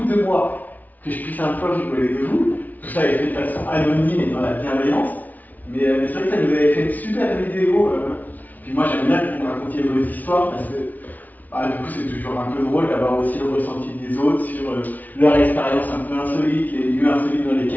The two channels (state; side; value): late; right; 0.077 ms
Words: de moi, que je puisse un peu rigoler de vous. Tout ça est fait de façon anonyme et dans la bienveillance. Mais c'est vrai que ça nous avait fait une super vidéo. Puis moi, j'aime bien que vous me racontiez vos histoires parce que du coup, c'est toujours un peu drôle d'avoir aussi le ressenti des autres sur leur expérience un peu insolite, les lieux insolites dans